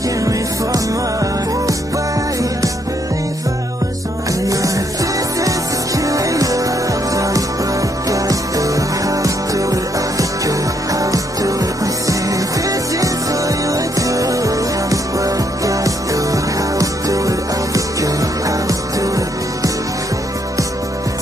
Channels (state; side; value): normal; both; correlation 0.73